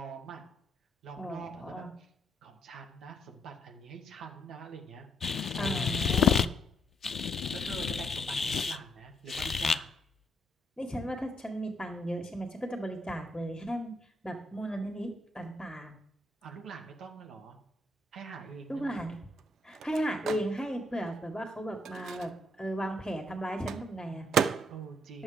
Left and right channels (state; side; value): normal; both; correlation 0.73